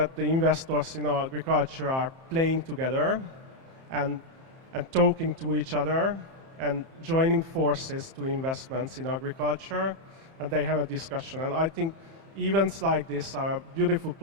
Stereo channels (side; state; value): left; late; 30 ms